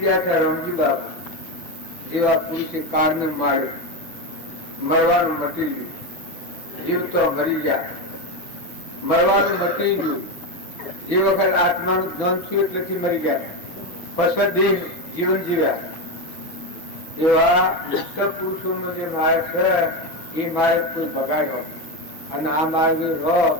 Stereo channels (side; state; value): right; late; 6.5 ms